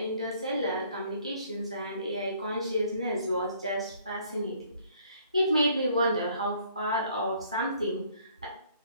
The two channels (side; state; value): both; inverted; correlation -0.61